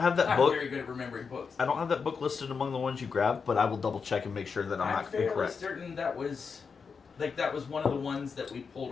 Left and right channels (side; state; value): right; quieter; 5.6 dB